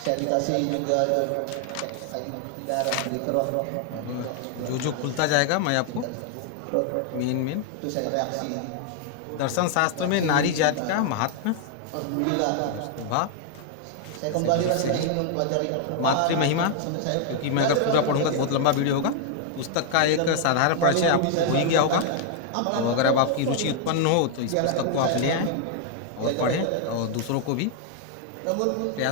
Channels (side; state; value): both; different; correlation 0.00